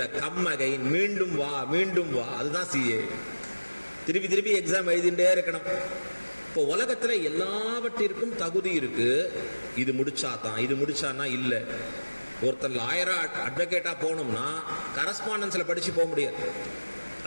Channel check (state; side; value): inverted; both; correlation -1.00